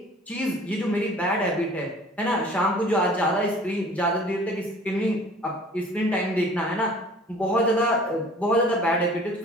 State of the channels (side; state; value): both; normal; correlation 0.49